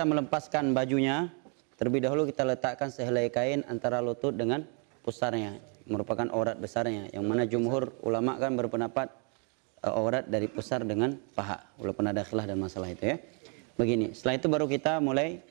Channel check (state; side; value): quieter; left; 38.2 dB